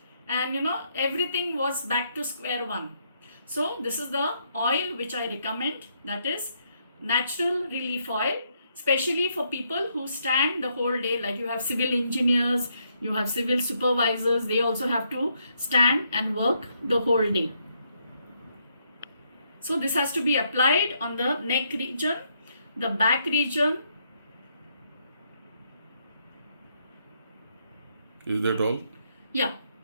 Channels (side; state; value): both; inverted; correlation -0.75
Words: and everything was back to square one. So this is the oil which I recommend, that is natural relief oil, especially for people who stand the whole day. Like you have civil engineers, you have civil supervisors, they also have to stand and work the whole day. So this has to be applied on the neck region, the back region. Is that all? Yeah.